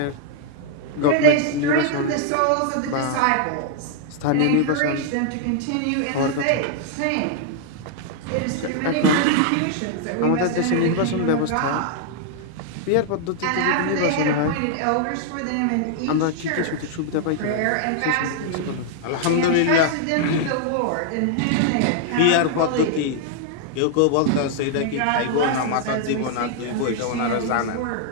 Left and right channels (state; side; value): different; both; correlation 0.00